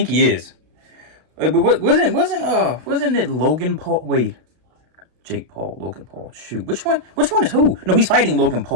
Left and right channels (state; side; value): late; left; 32 ms